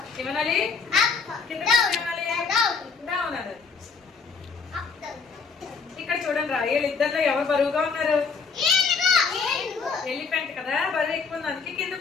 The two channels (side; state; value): right; quieter; 5.2 dB